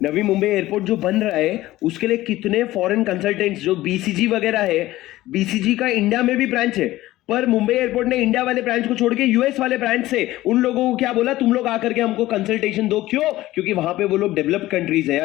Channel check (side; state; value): right; quieter; 16.4 dB